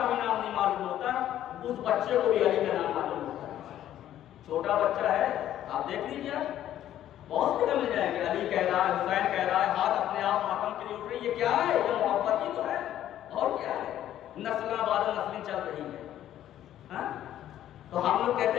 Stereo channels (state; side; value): quieter; right; 11.9 dB